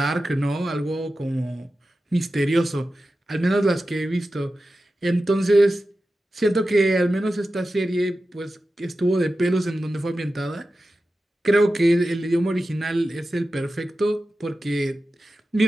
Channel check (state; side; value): normal; both; correlation 0.93